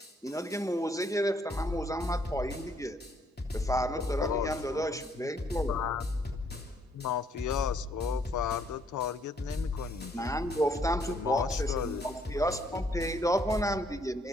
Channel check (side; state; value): both; normal; correlation 0.68